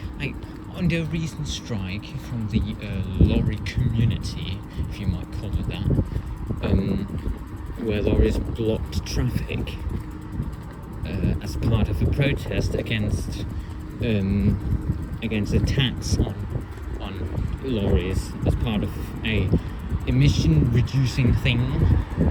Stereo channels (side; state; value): both; identical; correlation 1.00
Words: Like, under a recent strike from the lorry community, if you might call it that, where lorries blocked traffic as part of a protest against attacks on lorries as part of a emission reducing thing.